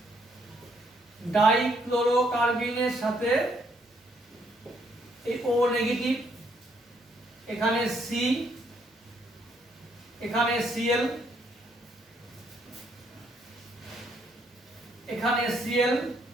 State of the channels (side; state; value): both; normal; correlation 0.71